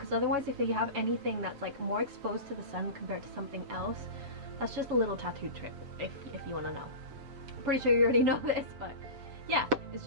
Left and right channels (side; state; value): left; late; 7.4 ms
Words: otherwise if you have anything that's like more exposed to the sun compared to something else, that's just a little tattoo tip if you want to know. I'm pretty sure you already know this, but yeah, it's